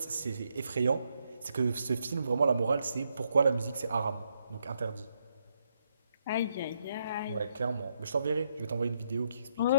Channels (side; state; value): both; inverted; correlation -0.77